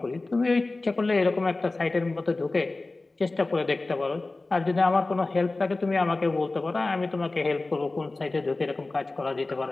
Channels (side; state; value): right; quieter; 3.2 dB